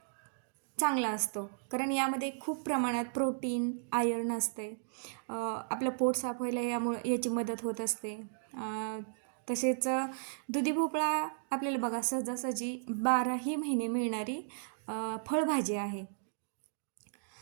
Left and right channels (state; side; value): silent; left; digital silence